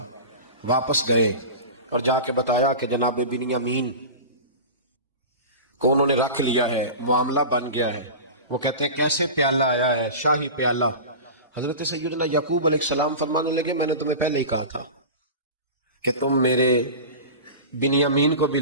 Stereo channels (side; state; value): both; inverted; correlation -0.31